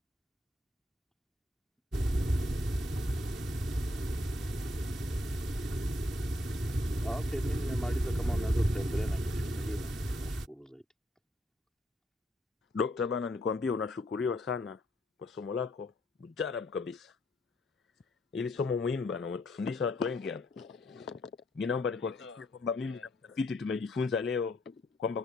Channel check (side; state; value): both; normal; correlation 0.73